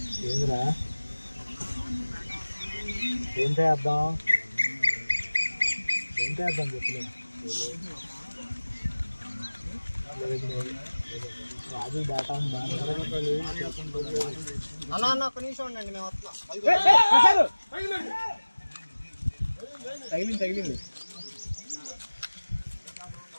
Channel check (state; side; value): inverted; both; correlation -1.00